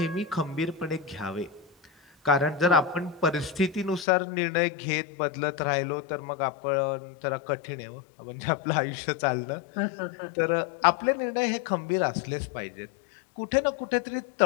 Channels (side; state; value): right; drops out; at 4.0 s